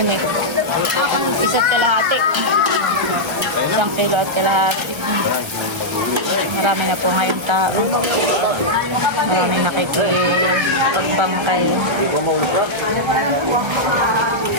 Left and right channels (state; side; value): late; left; 1.3 ms